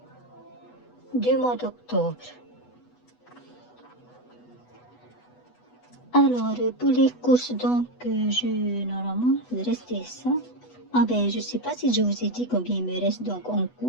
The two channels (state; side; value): late; right; 8.1 ms